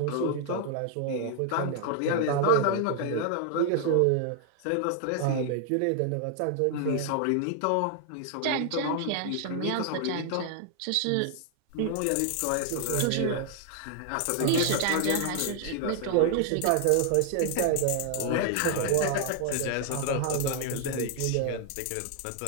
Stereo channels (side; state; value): both; different; correlation 0.00